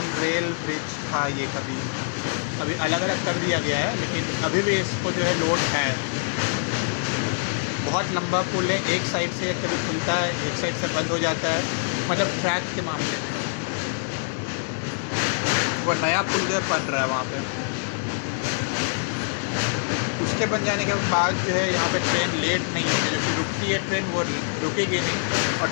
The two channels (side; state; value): right; silent; 62 dB below the other